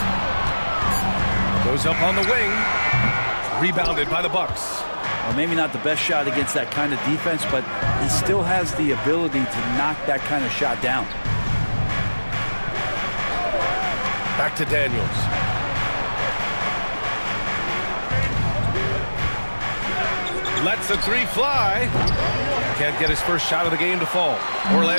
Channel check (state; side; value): inverted; both; correlation -1.00